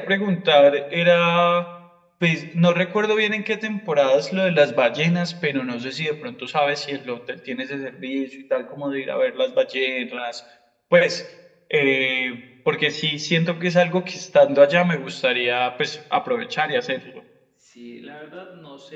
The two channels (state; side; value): identical; both; correlation 1.00